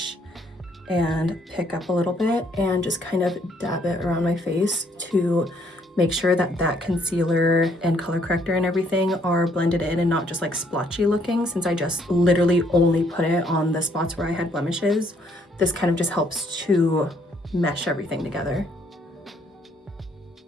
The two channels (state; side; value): normal; both; correlation 0.68